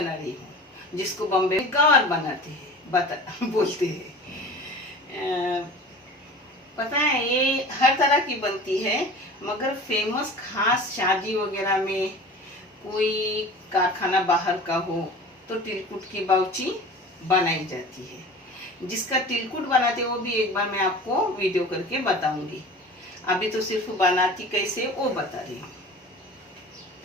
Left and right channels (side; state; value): both; normal; correlation 0.38